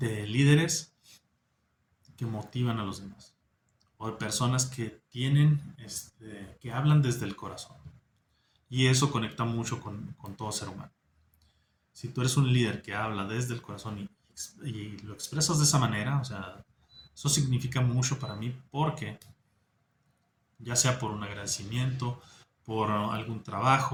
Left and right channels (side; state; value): both; identical; correlation 1.00